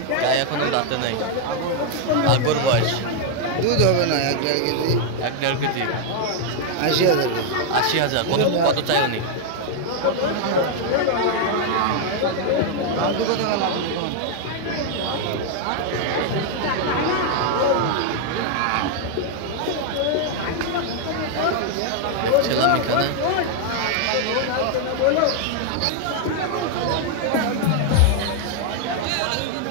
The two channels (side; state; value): both; different; correlation 0.00